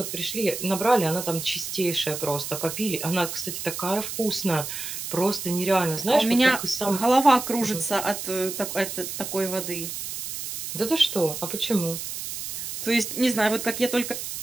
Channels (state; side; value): noise; right; hiss, 6 dB below the sound